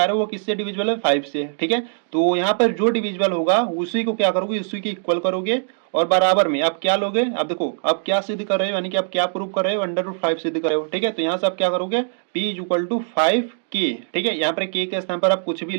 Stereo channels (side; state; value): left; silent; digital silence